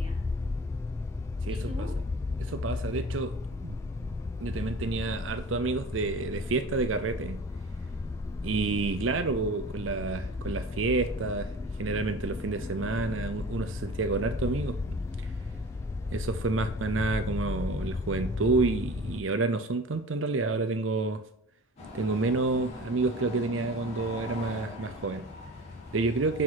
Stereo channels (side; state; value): both; normal; correlation 0.40